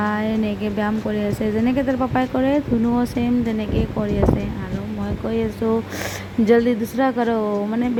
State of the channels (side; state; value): both; identical; correlation 1.00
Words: এনেকৈ ব্যায়াম কৰি আছে। যেনেকৈ তাৰ পাপাই কৰে ধুনুও ছেম তেনেকৈ কৰি আছে। আৰু মই কৈ আছোঁ জল্দি দুচৰা কৰোঁ, মানে